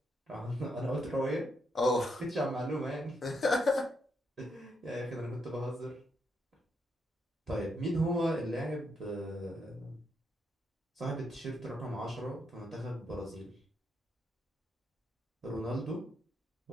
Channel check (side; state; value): both; normal; correlation 0.79